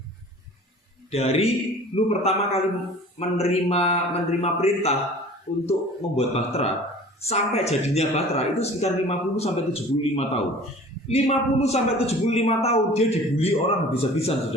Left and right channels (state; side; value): normal; both; correlation 0.45